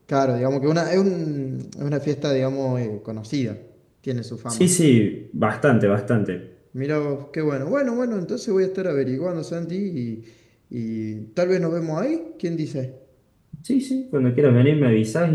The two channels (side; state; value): both; identical; correlation 1.00